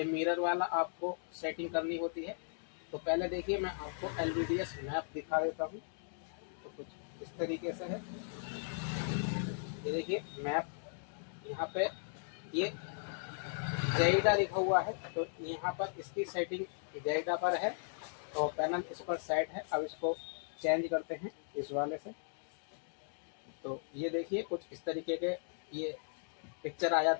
मिरर वाला आपको सेटिंग करनी होती है। तो पहले देखिए मैं आपको LVDS मैप दिखा देता हूँ। तो कुछ इस तरीके से है। ये देखिए मैप, यहाँ पे ये जाइडा लिखा हुआ है। तो यहाँ पर इसकी सेटिंग जाइडा पर है तो पैनल इस पर सेट है। अब इसको चेंज करते हैं इस वाले से। तो ये देखिए कुछ इस तरीके के ये पिक्चर आ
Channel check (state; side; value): silent; right; digital silence